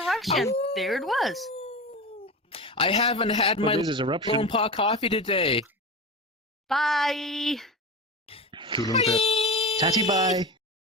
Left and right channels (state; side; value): normal; both; correlation 0.26